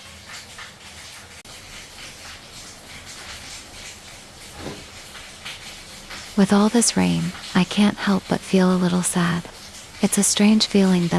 With all this rain, I can't help but feel a little sad. It's a strange feeling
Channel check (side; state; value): both; identical; correlation 1.00